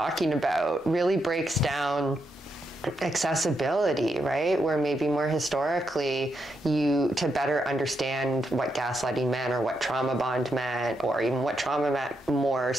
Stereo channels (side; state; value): both; normal; correlation 0.82